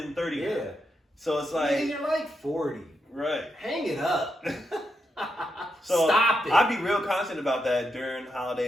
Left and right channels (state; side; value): normal; both; correlation 0.83